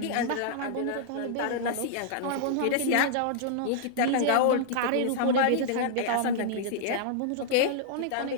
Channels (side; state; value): both; different; correlation -0.01